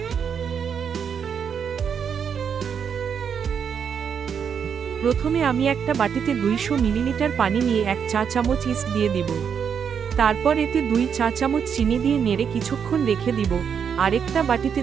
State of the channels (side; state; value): left; quieter; 7.2 dB